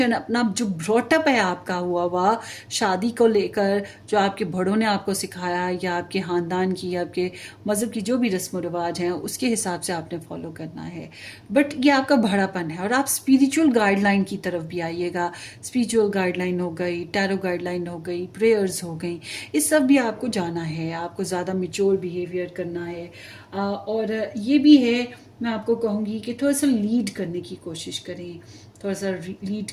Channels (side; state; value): both; identical; correlation 1.00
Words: अपना जो ब्रॉटअप है आपका हुआ शादी को लेकर, जो आपके बड़ों ने आपको सिखाया, या आपके ख़ानदान की या आपके मज़हब की जो भी रस्म रिवाज हैं, उसके हिसाब से आपने फॉलो करना है। बट ये आपका बड़ापन है। और आप स्पिरिचुअल गाइडलाइन की तरफ भी आइएगा। स्पिरिचुअल गाइडलाइन हो गई, टैरो गाइडलाइन हो गई, प्रेयर्स हो गई, इस सब भी आपको जाना है। आपको ज़्यादा मैच्योर बिहेवियर करना है। और ये भी है, मैं आपको कहूँगी कि थोड़ा सा लीड करने की कोशिश करें, थोड़ा सा लीड